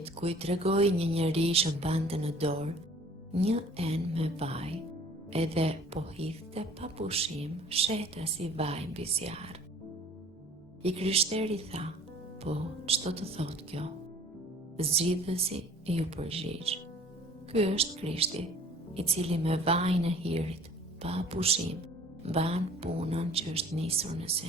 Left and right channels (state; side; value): normal; both; correlation 0.51